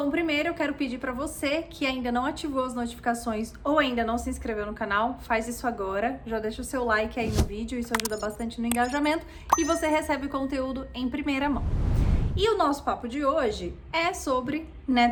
primeiro eu quero pedir para você que ainda não ativou as notificações ou ainda não se inscreveu no canal, faz isso agora, já deixa o seu like aí no vídeo, isso ajuda bastante no engajamento e você recebe o conteúdo em primeira mão. E o nosso papo de hoje é sobre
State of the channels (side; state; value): both; identical; correlation 1.00